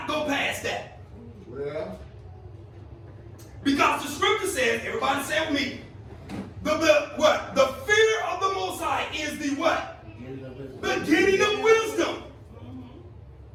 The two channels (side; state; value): both; identical; correlation 1.00